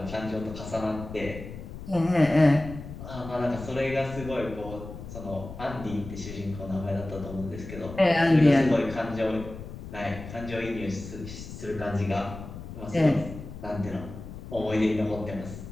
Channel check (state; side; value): noise; left; rumble, 11 dB below the sound